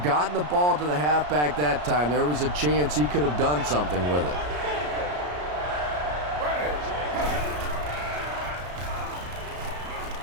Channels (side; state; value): left; late; 34 ms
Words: gotten the ball to the halfback that time, there was a chance he could have done something with it.